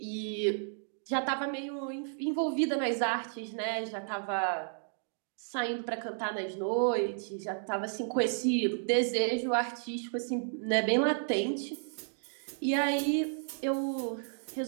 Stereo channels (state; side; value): silent; left; digital silence